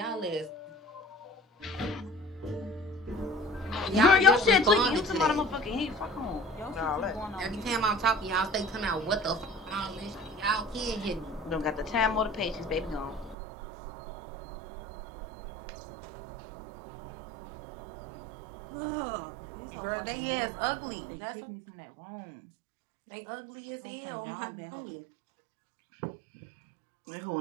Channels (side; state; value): left; drops out; at 13.4 s